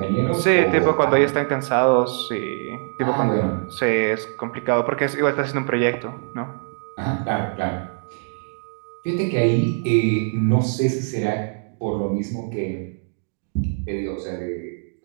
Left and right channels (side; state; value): left; silent; digital silence